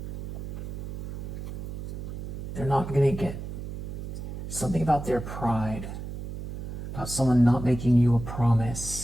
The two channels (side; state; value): right; noise; hum, 7 dB below the sound